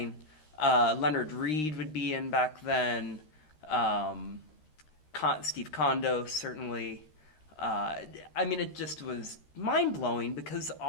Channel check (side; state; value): right; late; 13 ms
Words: Leonard Reed would be in back then. Steve Kondo, certainly. I mean, it just was mind-blowing because